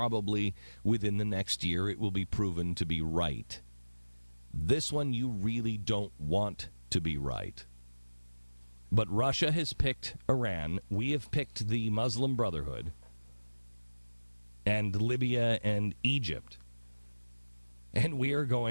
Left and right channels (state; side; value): inverted; both; correlation -1.00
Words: within the next year it will be proven to be right. This one you really don't want to be right. But Russia has picked Iran. We have picked the Muslim Brotherhood and Libya and Egypt. And we are